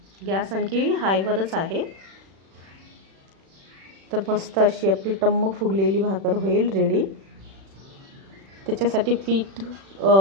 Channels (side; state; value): left; late; 36 ms